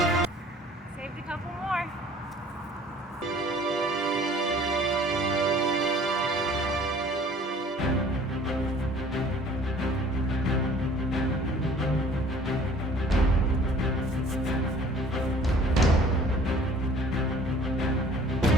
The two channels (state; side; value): normal; both; correlation 0.52